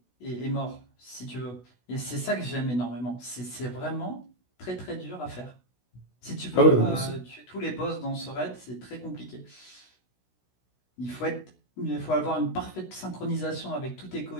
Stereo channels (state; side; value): late; right; 16 ms